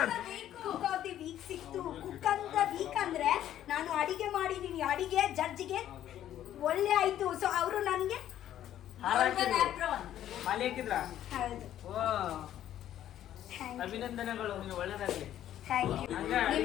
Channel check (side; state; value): right; quieter; 11.7 dB